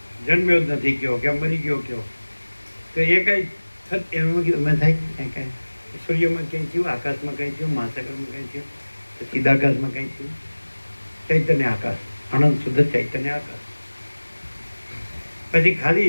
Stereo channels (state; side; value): inverted; both; correlation -1.00